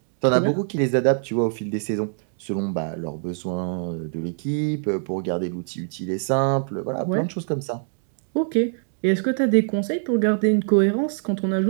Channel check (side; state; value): left; silent; digital silence